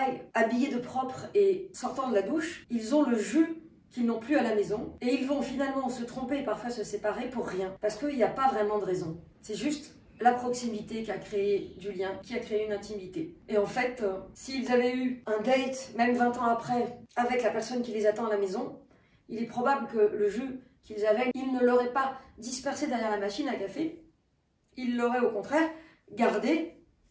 habillés de propre et sortant de la douche, ils ont le jus qu'ils n'ont plus à la maison, et ils vont finalement se tromper et parfois se séparer pour rien, parce qu'il n'y a pas vraiment de raison. C'est juste la proximité qui a créé du lien, qui a créé une intimité. Et en fait, s'ils avaient eu un date, même 20 ans après, avec la personne qui les attend à la maison, il est probable que le jus qu'ils avaient, ils ne l'auraient pas dispersé derrière la machine à café, ils l'auraient au contraire gardé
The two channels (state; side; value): identical; both; correlation 1.00